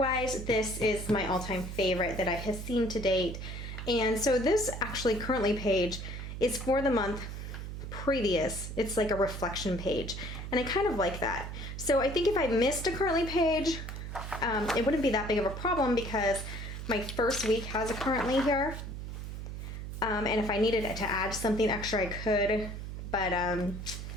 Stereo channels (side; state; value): right; noise; hum, 7 dB below the sound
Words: this is my all-time favorite that I have seen to date. And so this actually currently page is for the month previous. It's like a reflection page, and I kind of like that. So I think if I missed a currently page, it wouldn't be that big of a problem because my first week has a currently here. And if I needed to add something extra, I could. But